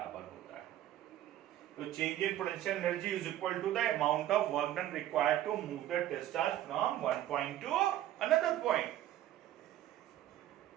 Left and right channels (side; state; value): left; quieter; 12.9 dB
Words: होता है। तो change in potential energy is equal to the amount of work done required to move the test charge from one point to another point.